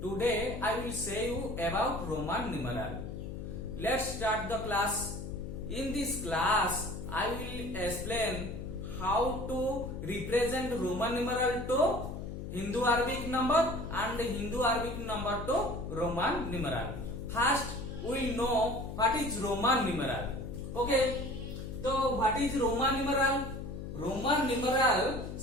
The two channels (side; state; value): left; noise; hum, 8 dB below the sound